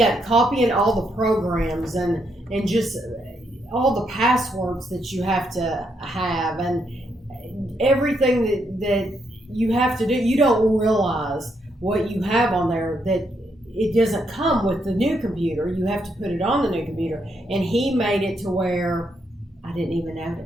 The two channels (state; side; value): normal; both; correlation 0.77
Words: copying all the programs and just all the passwords that you have to have and everything that you have to do. You don't realize what you have on there, that it doesn't come with the new computer. You have to put it on the new computer. And he made it to where I didn't even